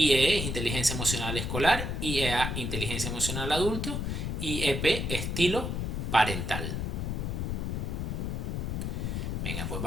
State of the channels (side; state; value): left; noise; rumble, 2 dB below the sound